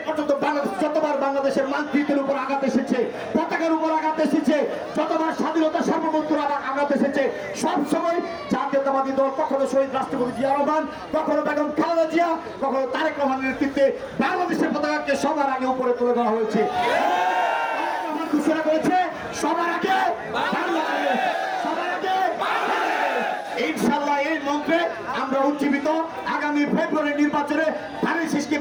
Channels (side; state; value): both; identical; correlation 1.00